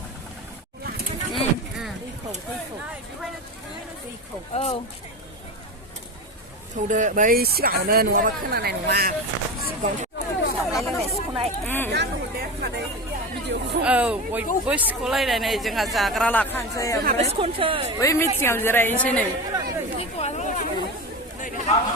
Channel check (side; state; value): both; normal; correlation 0.24